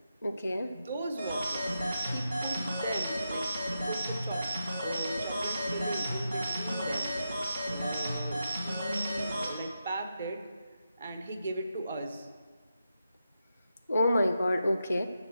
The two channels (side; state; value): both; inverted; correlation -0.87